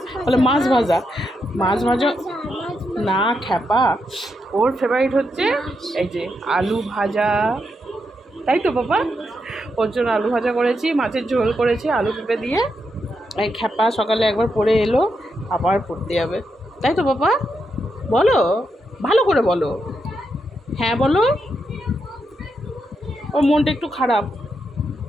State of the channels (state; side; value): normal; both; correlation 0.83